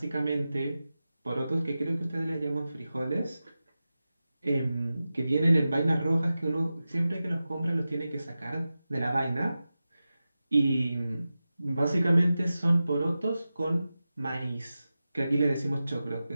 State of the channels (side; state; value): both; inverted; correlation -0.94